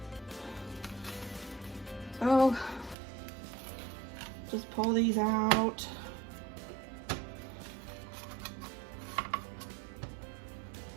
So, just pull these out.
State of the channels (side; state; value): left; drops out; at 3.0 s